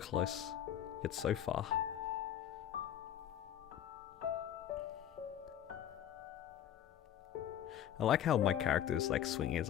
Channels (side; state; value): right; quieter; 10.6 dB